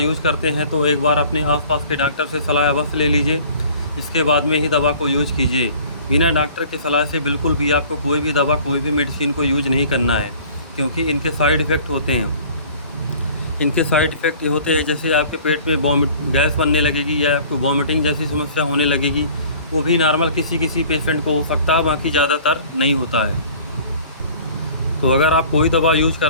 करते हैं तो एक बार अपने आसपास के डॉक्टर से सलाह अवश्य ले लीजिए, इसके बाद में ही दवा को यूज़ कीजिए। बिना डॉक्टर की सलाह से बिल्कुल भी आपको कोई भी दवा, कोई भी मेडिसिन को यूज नहीं करना है, क्योंकि इनके साइड इफ़ेक्ट होते हैं। इनके साइड इफ़ेक्ट ये होते हैं, जैसे आपके पेट में गैस बनने लगेगी या आपको वॉमिटिंग जैसी समस्या होने लगेगी। वो भी नॉर्मल किसी किसी पेशेंट को हो सकता है, बाकी ज़्यादातर नहीं होता है। तो अगर आप कोई दवा यूज़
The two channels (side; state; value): both; inverted; correlation -0.49